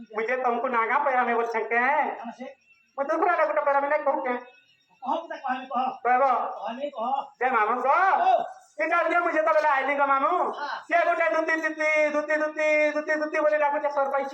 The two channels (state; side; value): identical; both; correlation 1.00